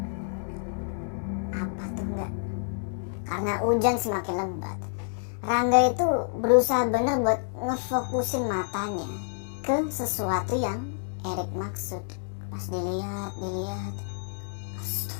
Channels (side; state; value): right; silent; digital silence